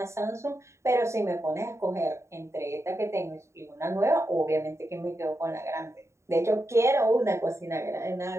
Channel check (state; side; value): late; left; 0.14 ms